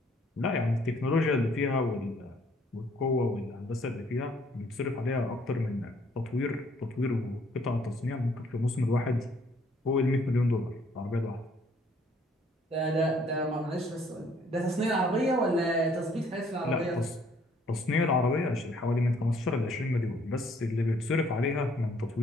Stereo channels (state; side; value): normal; both; correlation 0.63